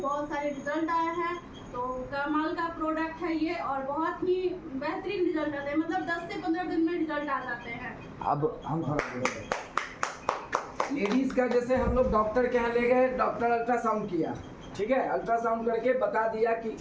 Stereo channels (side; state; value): both; identical; correlation 1.00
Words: सारे रिजल्ट आए हैं। तो कमाल का प्रोडक्ट है ये और बहुत ही बेहतरीन रिजल्ट आते हैं, मतलब 10 से 15 दिन में रिजल्ट आ जाते हैं। अब हम लेडीज का, जैसे हम लोग डॉक्टर के यहाँ ले गए, डॉक्टर अल्ट्रासाउंड किया, ठीक है, अल्ट्रासाउंड करके बता दिया कि